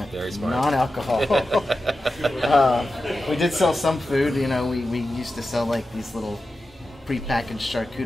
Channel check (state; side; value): normal; both; correlation 0.92